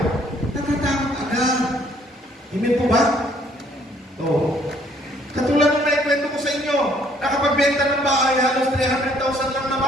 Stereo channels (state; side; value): normal; both; correlation 0.63